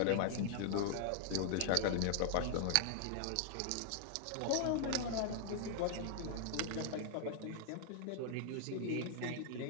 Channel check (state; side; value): different; both; correlation 0.00